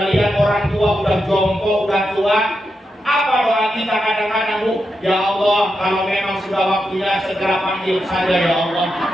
orang tua udah jompo, udah tua. Apa doa kita kadang-kadang Bu? Ya Allah, kalau memang sudah waktunya segera panggil saja ya Allah.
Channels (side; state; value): both; normal; correlation 0.86